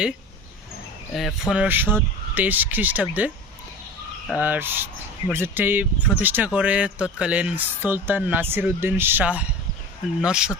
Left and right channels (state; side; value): normal; both; correlation 0.34